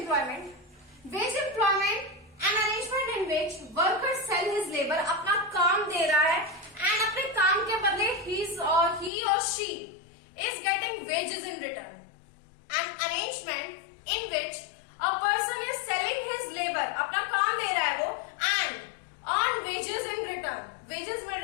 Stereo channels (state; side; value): drops out; right; at 9.1 s